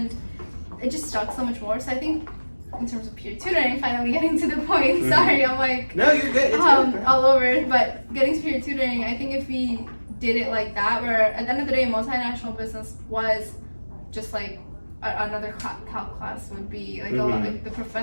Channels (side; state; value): both; inverted; correlation -1.00